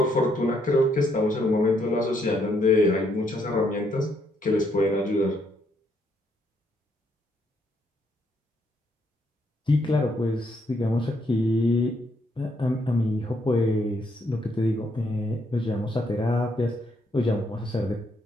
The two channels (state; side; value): normal; both; correlation 0.73